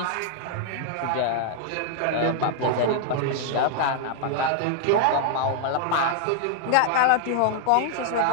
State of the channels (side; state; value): both; different; correlation 0.00